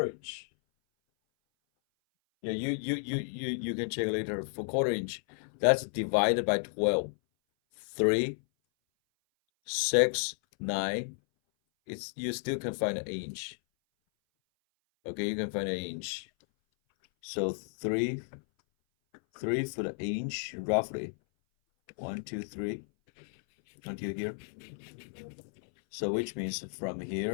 inch. Yeah, you can check later for quarter inch. That's divided by 12. 3, 6, 9. You still can find an inch. Okay, you can find an inch. So 3 foot an inch roughly. 1, 2, 3 until here. So which means from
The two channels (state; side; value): silent; right; 56 dB below the other